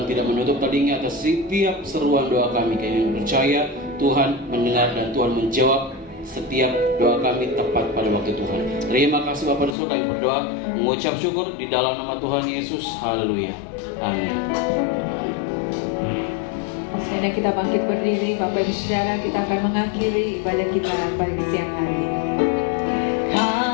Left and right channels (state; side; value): drops out; right; at 9.8 s